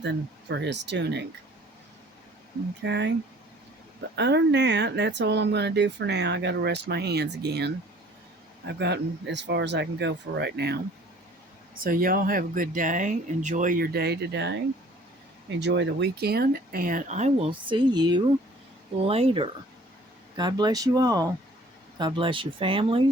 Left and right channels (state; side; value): normal; both; correlation 0.53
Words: for his tunic. Okay. But other than that, that's all I'm going to do for now. I got to rest my hands again. I've gotten as far as I can go for right now. So y'all have a good day. Enjoy your day today. Enjoy the weekend. And I will see you later. God bless you all. God bless your